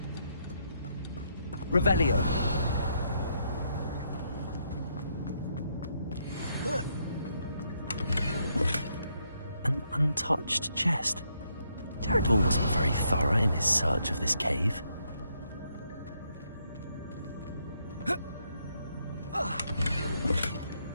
Revelio. An untouched chest. Jackdaw wasn't very thorough in his search of this cave.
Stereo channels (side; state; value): both; inverted; correlation -0.75